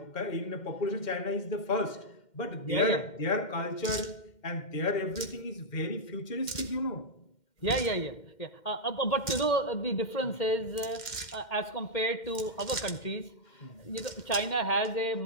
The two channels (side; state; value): right; late; 2.1 ms